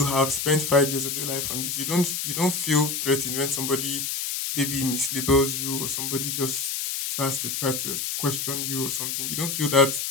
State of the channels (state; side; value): noise; left; hiss, 2 dB below the sound